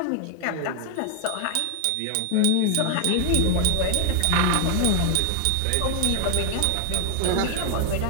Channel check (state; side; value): different; both; correlation 0.00